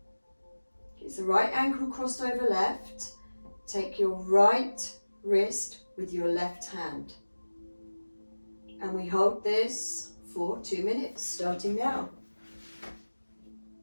It's the right ankle crossed over left. Take your right wrist with your left hand. And we hold this for 2 minutes, starting now.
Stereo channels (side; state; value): both; inverted; correlation -1.00